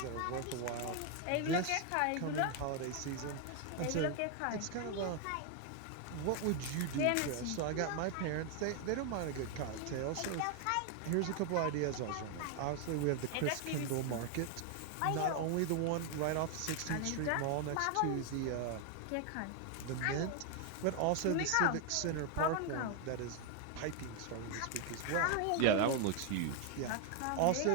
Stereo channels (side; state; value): both; different; correlation 0.01